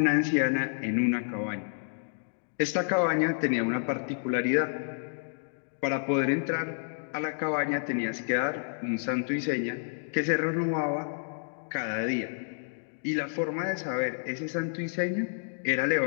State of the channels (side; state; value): right; silent; digital silence